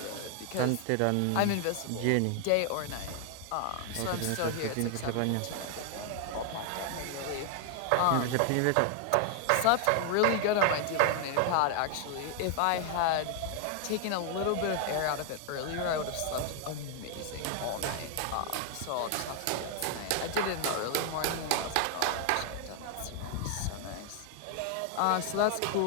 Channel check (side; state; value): both; different; correlation 0.00